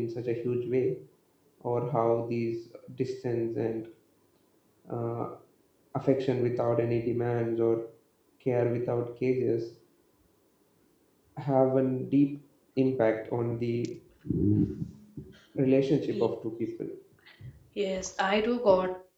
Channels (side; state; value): both; identical; correlation 1.00